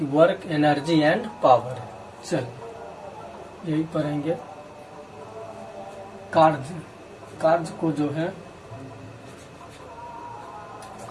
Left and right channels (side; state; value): both; identical; correlation 1.00